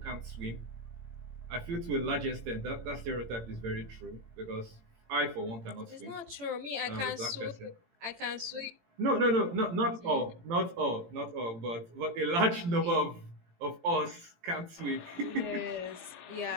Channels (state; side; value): late; left; 18 ms